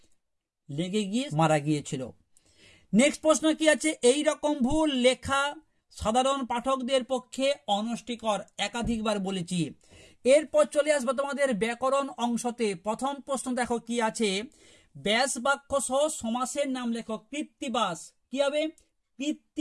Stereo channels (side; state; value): both; identical; correlation 1.00